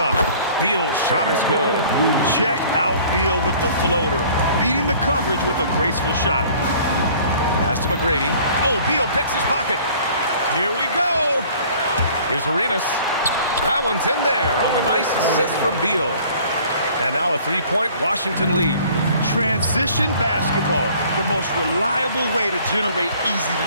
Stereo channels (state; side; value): inverted; both; correlation -0.52